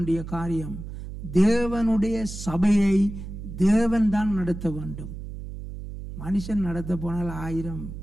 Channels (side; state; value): right; noise; hum, 10 dB below the sound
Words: காரியம், தேவனுடைய சபையை தேவன் தான் நடத்த வேண்டும். மனுஷன் நடத்த போனால் 1000